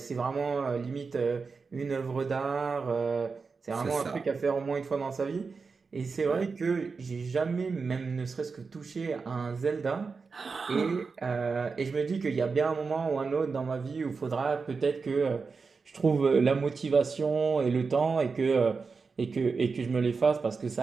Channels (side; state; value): left; quieter; 4.8 dB